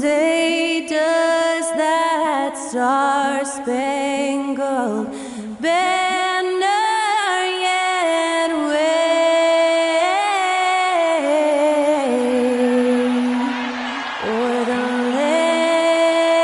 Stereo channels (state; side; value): identical; both; correlation 1.00